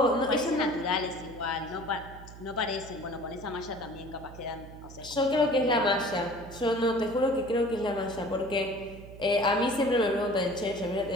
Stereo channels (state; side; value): noise; right; hum, 16 dB below the sound